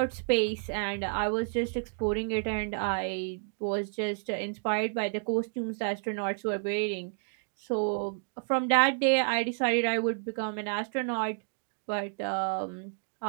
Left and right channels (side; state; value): left; silent; digital silence